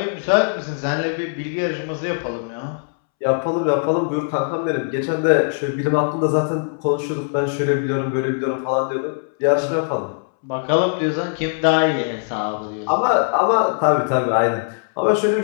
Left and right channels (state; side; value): silent; right; 65 dB below the other